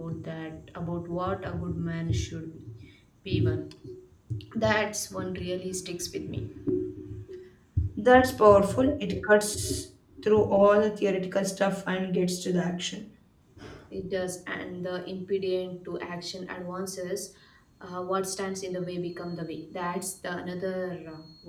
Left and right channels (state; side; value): identical; both; correlation 1.00